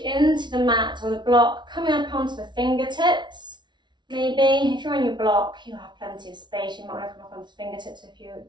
the mat or the block, coming up onto the fingertips. Maybe if you're on your block, you have plenty of space. You might want to come up onto the fingertips if you're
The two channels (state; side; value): late; left; 0.22 ms